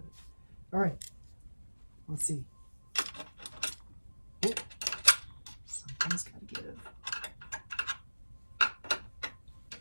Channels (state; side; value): inverted; both; correlation -1.00